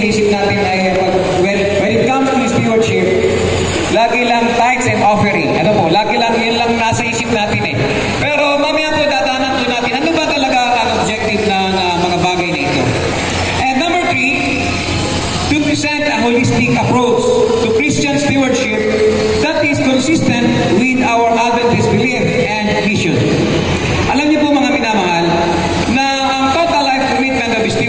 natin ay when it comes to stewardship, lagi lang tithes and offering. Ano po, lagi lang yun lang nasa isip natin eh. Pero mamaya po dadanan po natin, ano ba talaga ang objective ng mga bagay na ito? And number 3, to present a holistic approach to Christian stewardship that is consistent with our Adventist belief and mission. Alam niyo po mga minamahal, na ang total life commitment of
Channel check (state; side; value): identical; both; correlation 1.00